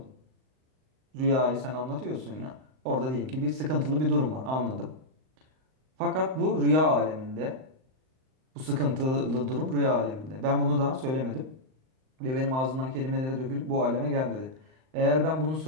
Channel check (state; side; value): late; left; 38 ms